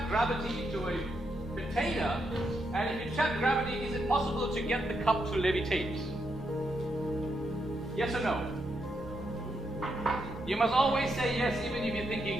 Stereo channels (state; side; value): normal; both; correlation 0.81